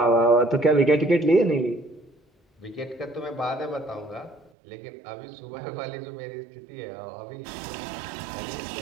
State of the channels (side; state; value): left; drops out; at 4.5 s